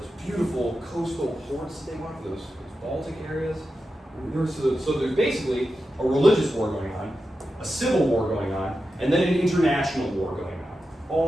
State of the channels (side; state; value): both; normal; correlation 0.90